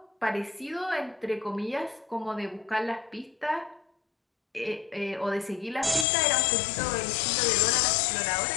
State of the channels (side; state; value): right; drops out; at 6.1 s